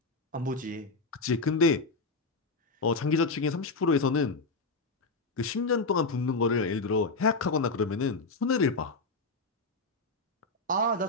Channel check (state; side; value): quieter; right; 3.5 dB